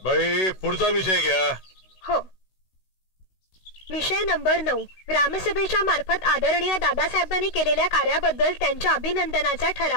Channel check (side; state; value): right; late; 16 ms